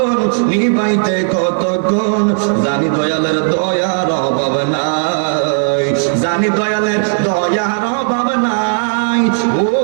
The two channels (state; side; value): silent; left; digital silence